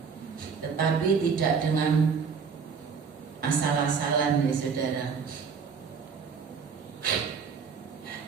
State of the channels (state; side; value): quieter; left; 5.9 dB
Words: tetapi tidak dengan asal-asalan ya saudara.